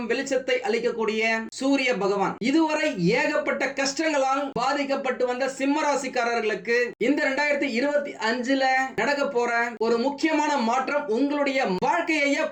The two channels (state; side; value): identical; both; correlation 1.00